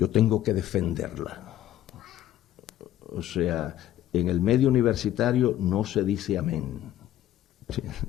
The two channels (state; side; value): quieter; right; 12.4 dB